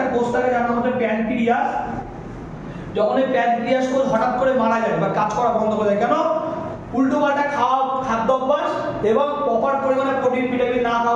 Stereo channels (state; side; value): identical; both; correlation 1.00